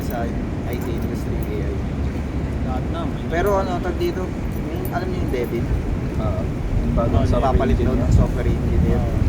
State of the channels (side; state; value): both; identical; correlation 1.00